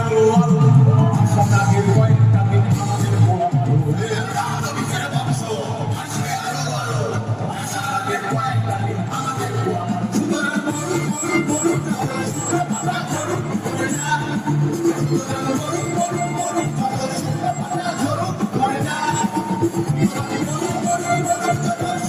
আরো আরো, আশা নাগের কয়েকটা দিন আমাদের বরাদ্দ হয়ে। বীজের বংশ আসবে আরো আরো, আশা নাগের কয়েকটা দিন আমাদের বরাদ্দ। সুতরাং মরুক মরুক মরুক, পাতা ঝরুক পড়ে যা। সুতরাং মরুক মরুক মরুক, পাতা ঝরুক পড়ে যা। মরুক মরুক মরুক,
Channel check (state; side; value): identical; both; correlation 1.00